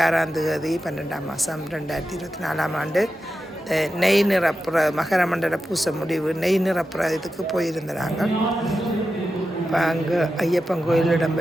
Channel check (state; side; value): normal; both; correlation 0.91